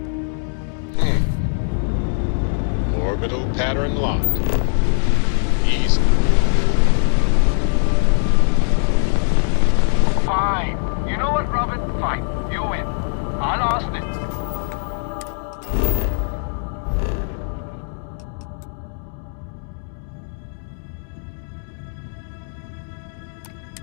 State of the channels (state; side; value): silent; right; 65 dB below the other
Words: Orbital pattern locked. Easy. Fine. You know what, Robin? Fine. You win. I lost it.